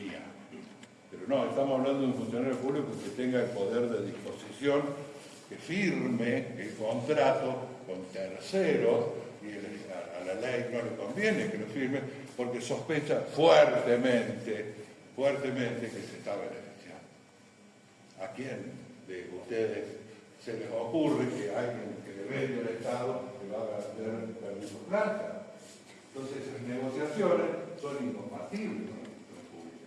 pero no, estamos hablando de un funcionario público que tenga el poder de disposición, que firme el contrato con terceros, y a la ley no le conviene que lo firme, porque sospecha fuertemente que se está beneficiando. ¿A quién de ustedes se les ocurre que alguien que le vende al Estado le va a vender permiso plata? Entonces esas negociaciones son incompatibles con la función pública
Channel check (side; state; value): both; identical; correlation 1.00